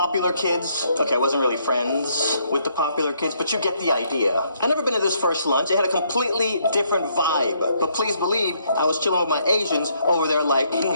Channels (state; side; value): inverted; both; correlation -0.71